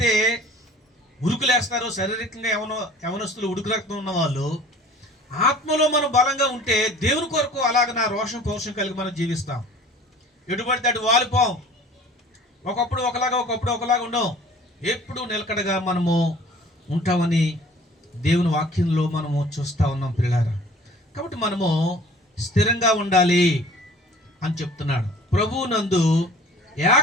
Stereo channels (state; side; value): normal; both; correlation 0.48